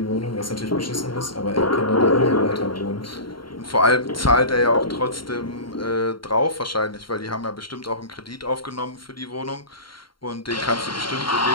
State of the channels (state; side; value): late; right; 0.73 ms